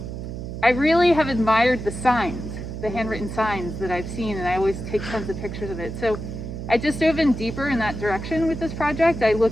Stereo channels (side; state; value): right; noise; hum, 7 dB below the sound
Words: really have admired the signs, the handwritten signs that I've seen, and I always take tons of pictures of it. So I just dove in deeper in that direction with this project. I